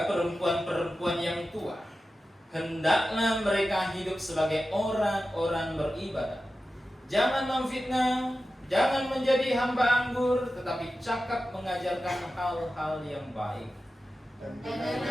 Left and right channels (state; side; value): normal; both; correlation 0.93